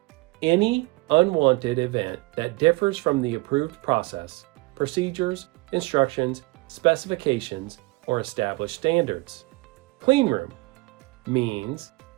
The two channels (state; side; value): quieter; left; 23.3 dB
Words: any unwanted event that differs from the approved process, procedures, instructions, specifications, or established standards. Cleanroom means